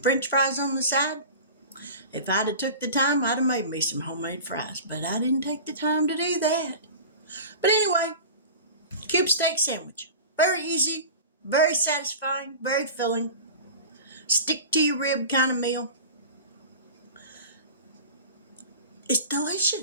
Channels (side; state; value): both; inverted; correlation -0.36